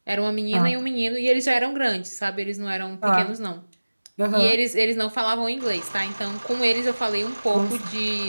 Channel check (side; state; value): both; inverted; correlation -1.00